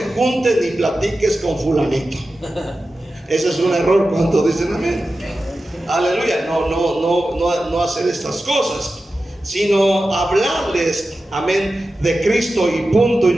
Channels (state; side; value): normal; both; correlation 0.93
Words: juntes ni platiques con fulanito. Ese es un error. Cuando dicen amén. Aleluya. No hacer estas cosas, sino hablarles, amén, de Cristo y punto y